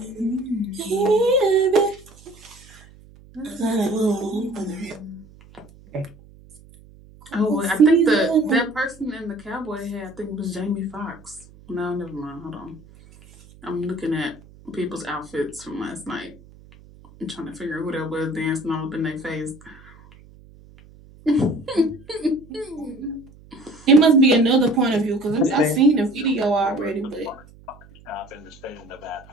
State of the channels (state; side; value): noise; right; hum, 23 dB below the sound